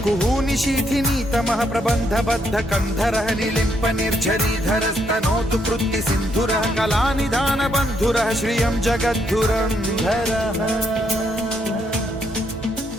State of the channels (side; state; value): both; normal; correlation 0.74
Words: कुहूनि शीथिनी तमः प्रबन्ध बद्ध कन्धरः निलिम्प निर्झरीधर स्तनोतु कृत्ति सिन्धुरः कलानिधान बन्धुरः श्रियं जगद्धुरन्धरः